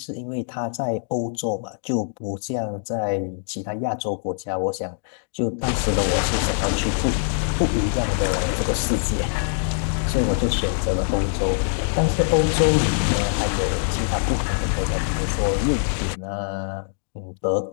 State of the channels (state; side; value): silent; right; digital silence